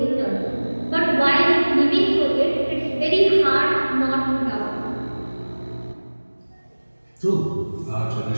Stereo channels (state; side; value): inverted; both; correlation -1.00